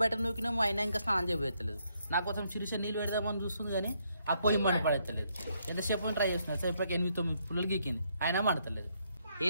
నూకినేమో అయినా ఇంకా స్నానం చేయలేదు. నా కోసం చిరుస నీళ్ళు పెడదామని చూస్తుంది కానీ ఆ పొయ్యి మంట పడతలేదు. ఎంతసేపు ట్రై చేస్తున్నా సేపటికి 8-9 పుల్లలు గీకింది అయినా మండతలేదు.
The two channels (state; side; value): inverted; both; correlation -0.74